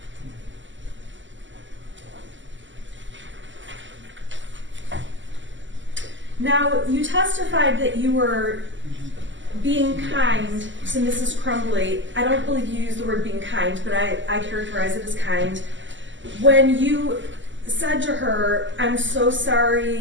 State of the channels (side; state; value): left; late; 0.54 ms